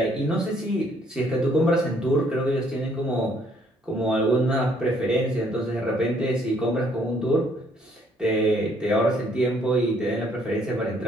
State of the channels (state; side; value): normal; both; correlation 0.66